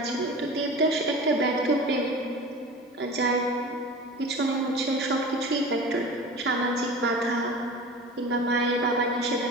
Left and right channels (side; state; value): both; normal; correlation 0.35